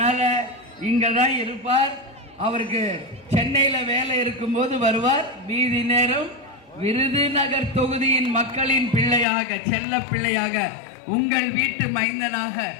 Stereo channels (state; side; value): drops out; right; at 9.2 s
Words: இங்க தான் இருப்பார். அவருக்கு சென்னையில வேலை இருக்கும்போது வருவார். மீதி நேரம் விருதுநகர் தொகுதியின் மக்களின் பிள்ளையாக, செல்ல பிள்ளையாக, உங்கள் வீட்டு மைந்தனாக